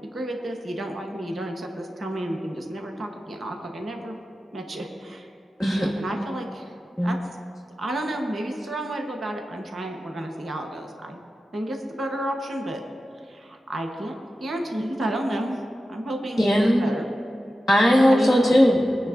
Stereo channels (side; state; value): both; normal; correlation 0.93